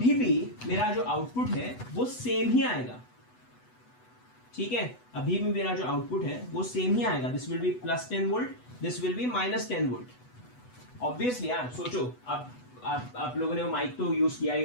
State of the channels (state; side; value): late; right; 8.1 ms